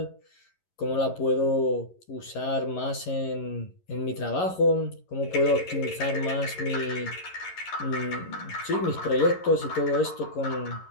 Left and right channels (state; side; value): late; right; 11 ms